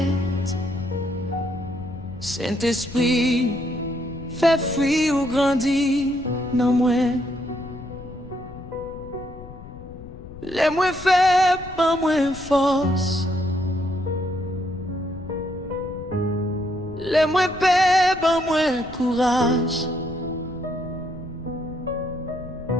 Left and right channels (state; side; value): noise; left; rumble, 15 dB below the sound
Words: Saint-Esprit, fais fruit ou grandit dans moi. Les moins faibles, pas moins force. Les moins paix, pas moins courage.